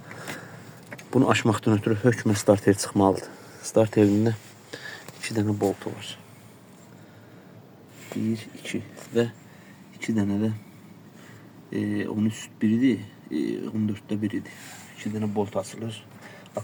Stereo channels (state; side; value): identical; both; correlation 1.00